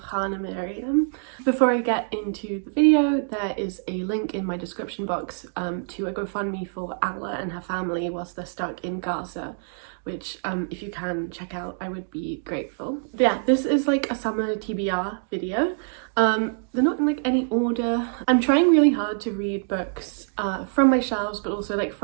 Hannah Miriam. Before I get into the video, there is a link in my description box to a GoFundMe for Allah and her family whilst they're stuck in Gaza, which if you can check out, I would be grateful. But yeah, this is like a summer TBR video. They're not in like any order. I'm trying really hard to read books from my shelves, but also like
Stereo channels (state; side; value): silent; left; digital silence